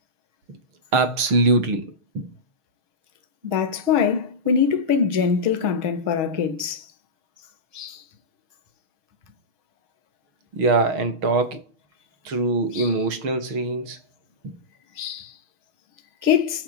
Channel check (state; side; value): late; left; 6.4 ms